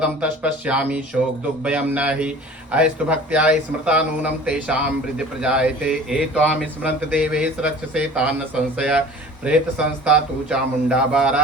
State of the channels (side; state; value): both; normal; correlation 0.43